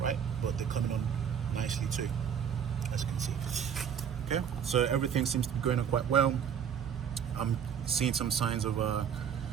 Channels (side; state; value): left; quieter; 8.1 dB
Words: right? But they're coming on nicely too, as you can see. Okay, so everything seems to be going on quite well. I'm seeing some signs of